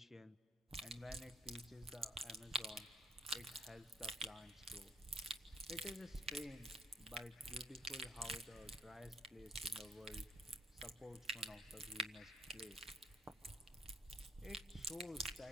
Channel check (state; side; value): normal; both; correlation 0.65